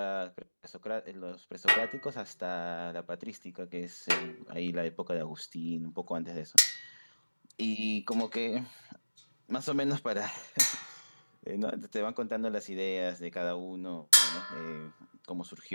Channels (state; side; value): inverted; both; correlation -1.00